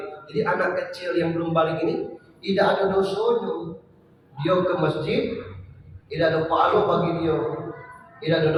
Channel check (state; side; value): identical; both; correlation 1.00